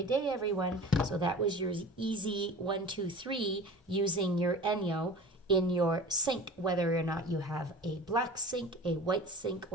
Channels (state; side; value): normal; both; correlation 0.39